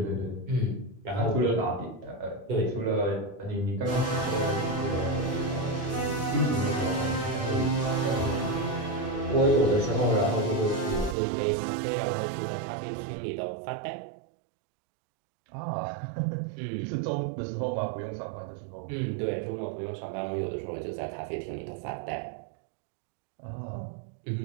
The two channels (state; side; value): drops out; left; at 11.2 s